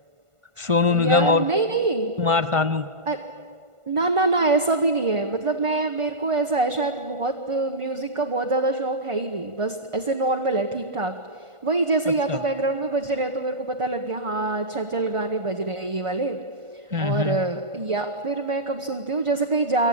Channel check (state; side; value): late; left; 1.5 ms